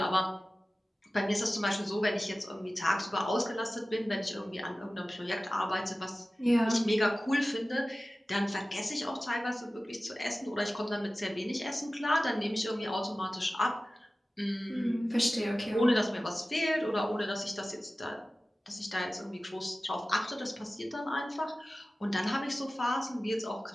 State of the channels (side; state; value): both; normal; correlation 0.96